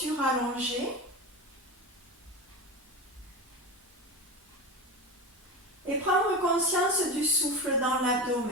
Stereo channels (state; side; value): normal; both; correlation 0.24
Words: allongée, et prendre conscience du souffle dans